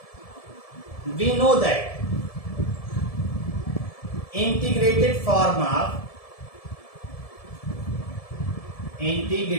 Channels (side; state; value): right; late; 1.7 ms